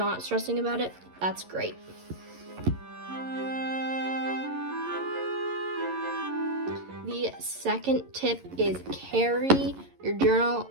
stressing about it, that's great. The second tip is carry your journal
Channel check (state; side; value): late; left; 11 ms